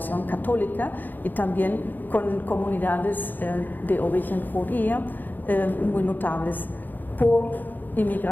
católica, y también con comunidades de origen judía muy notables por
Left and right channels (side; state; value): right; late; 0.089 ms